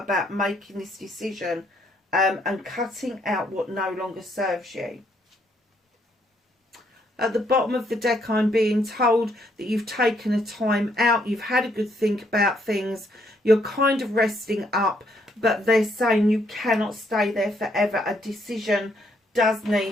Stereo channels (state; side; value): normal; both; correlation 0.72